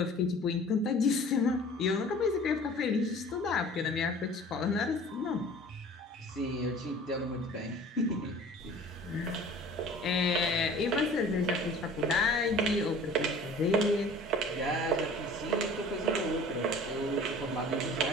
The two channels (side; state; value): both; normal; correlation 0.46